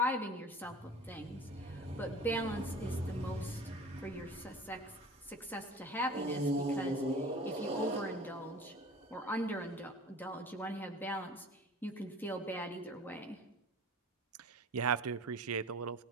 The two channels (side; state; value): both; normal; correlation 0.41